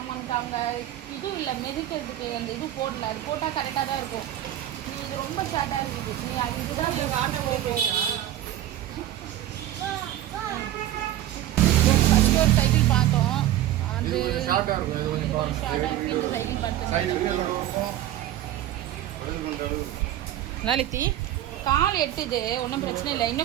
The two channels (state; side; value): quieter; left; 12.9 dB